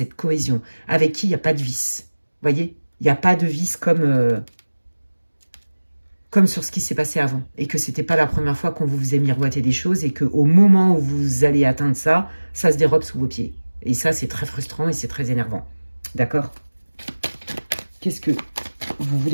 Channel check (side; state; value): both; inverted; correlation -1.00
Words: cohésion, avec qui il n'y a pas de vice. Vous voyez? Il n'y a pas de vice comme sur ce qui s'est passé avant. Et que ce n'était pas la première fois qu'on vous faisait miroiter des choses et qu'au moment où vous allez atteindre ça, ça se dérobe sous vos pieds. Et ça, c'est très frustrant et c'est très énervant. D'accord? Qu'est-ce que vous